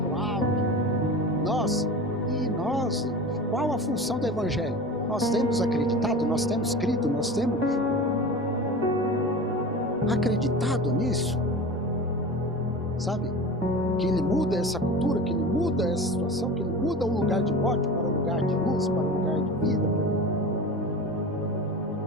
o alto, nossa, e nós, qual a função do Evangelho? Nós temos acreditado, nós temos crido, nós temos acreditado nisso, sabe? Que ele muda essa cultura, que ele muda essa situação, que ele muda o lugar de morte para o lugar de luz, para o lugar de vida.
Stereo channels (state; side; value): normal; both; correlation 0.32